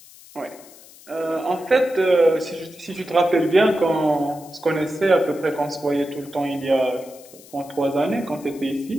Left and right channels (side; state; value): left; noise; hiss, 22 dB below the sound